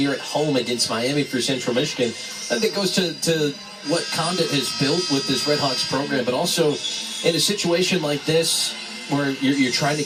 at home against Miami for Central Michigan. I think it goes to what Condit has built with this Redhawks program, but also in a situation like this where you're trying to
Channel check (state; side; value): identical; both; correlation 1.00